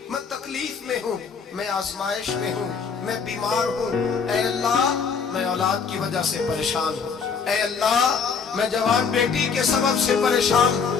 میں تکلیف میں ہوں، میں آزمائش میں ہوں، میں بیمار ہوں، اے اللہ میں اولاد کی وجہ سے پریشان ہوں، اے اللہ میں جوان بیٹی کے سبب سے پریشان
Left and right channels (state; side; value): quieter; right; 5.8 dB